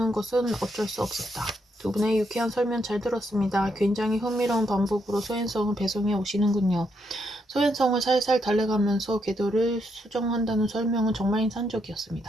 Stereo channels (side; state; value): both; normal; correlation 0.78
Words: 것은 어쩔 수 없었다. 두 분의 유쾌한 설명 잘 들었습니다. 굉장히 흥미로운 방법으로 소행성을 배송해 오시는군요. 소행성을 살살 달래가면서 궤도를 수정한다는 설명은 정말